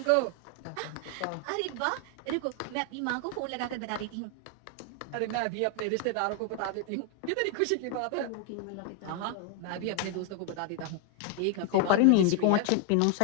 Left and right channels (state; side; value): different; both; correlation 0.00